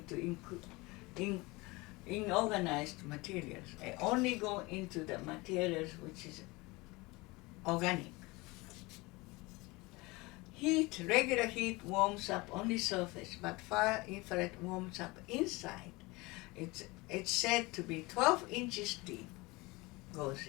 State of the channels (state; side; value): quieter; right; 23.5 dB